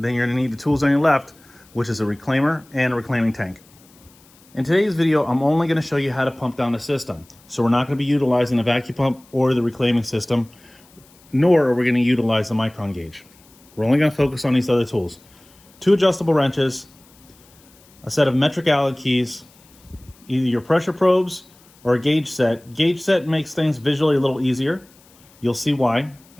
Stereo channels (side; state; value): left; noise; hiss, 28 dB below the sound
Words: you're going to need the tools on your left, which is a reclaimer and a reclaiming tank. In today's video, I'm only going to show you how to pump down the system. So we're not going to be utilizing the vacuum pump or the reclaiming system, nor are we going to utilize the micron gauge. We're only going to focus on these other tools. 2 adjustable wrenches, a set of metric Allen keys, either your pressure probes or a gauge set. Gauge set makes things visually a little easier. You'll see why